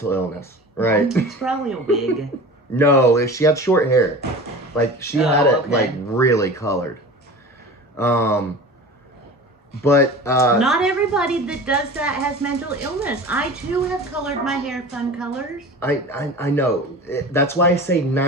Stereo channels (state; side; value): normal; both; correlation 0.36